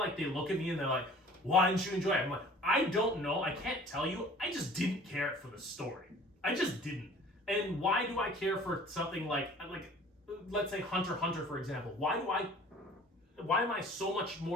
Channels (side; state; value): both; normal; correlation 0.48